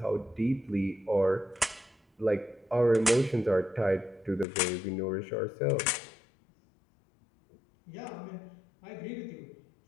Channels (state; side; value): drops out; right; at 4.5 s